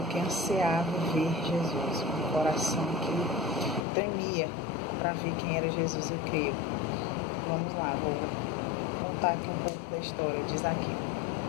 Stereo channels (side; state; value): right; drops out; at 3.9 s